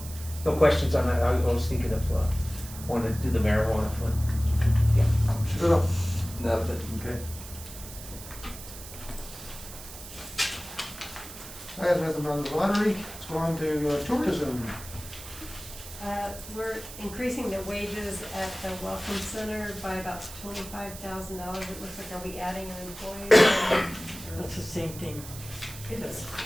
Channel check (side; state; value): right; noise; hiss, 14 dB below the sound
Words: questions on that. I was thinking of, wanting to do the marijuana fund. Shut up. Nothing. Okay. I have nothing on the lottery. Let's go on to tourism. We're increasing the wages at the Welcome Center by about $25,000. It looks like, are we adding an employee? That's the same thing.